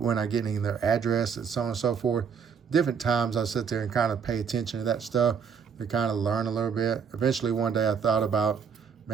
I get in their address and so on and so forth. Different times I sit there and kind of pay attention to that stuff to kind of learn a little bit. Eventually one day I thought about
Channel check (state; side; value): quieter; left; 6.6 dB